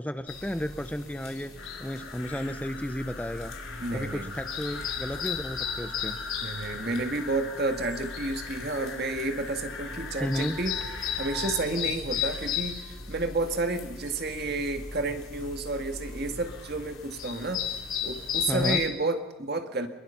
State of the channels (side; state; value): both; normal; correlation 0.41